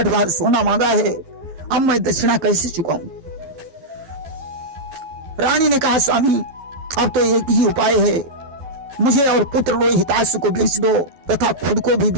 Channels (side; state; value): left; late; 12 ms